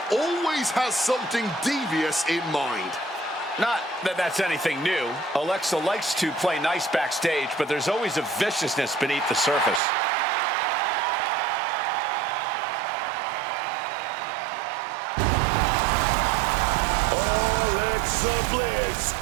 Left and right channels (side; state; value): left; drops out; at 9.8 s